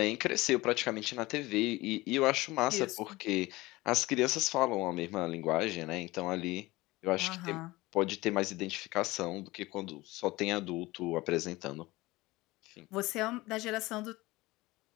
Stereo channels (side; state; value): right; quieter; 20.3 dB